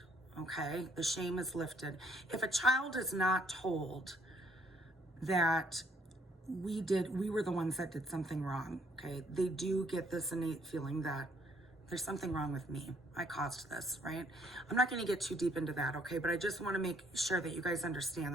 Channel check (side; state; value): both; normal; correlation 0.66